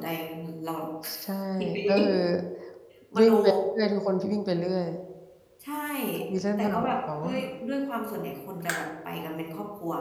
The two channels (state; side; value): identical; both; correlation 1.00